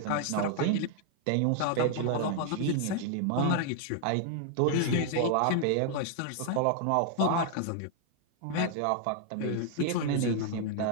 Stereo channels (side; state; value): both; different; correlation 0.00